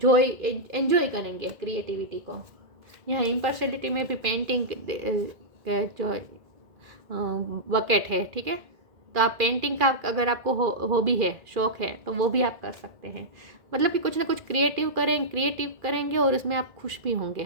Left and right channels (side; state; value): left; late; 2.4 ms